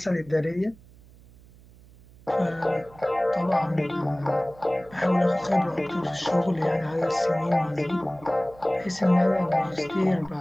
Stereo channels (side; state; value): right; noise; hum, 24 dB below the sound